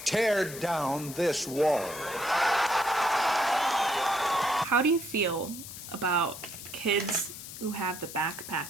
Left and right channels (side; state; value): left; noise; hiss, 12 dB below the sound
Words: tear down this wall. How do you feel about kids who have the